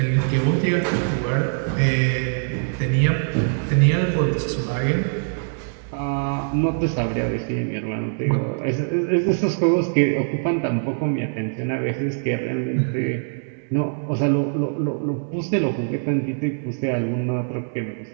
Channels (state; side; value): silent; left; 64 dB below the other